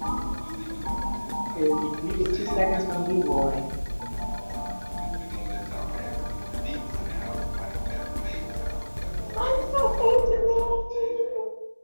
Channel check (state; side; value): inverted; both; correlation -1.00